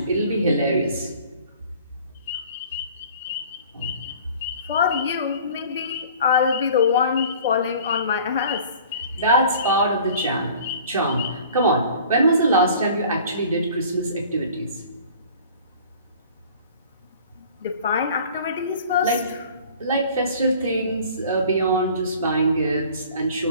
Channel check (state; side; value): inverted; both; correlation -0.48